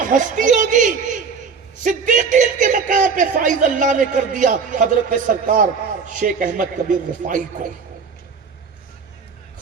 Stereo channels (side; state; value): left; quieter; 5.5 dB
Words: ہستی ہوگی۔ صدیقیت کے مقام پہ فائز اللہ نے کر دیا حضرت سرکار شیخ احمد کبیر رفاعی کو۔